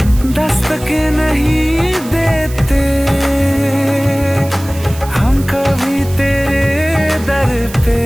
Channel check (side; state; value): right; noise; hiss, 17 dB below the sound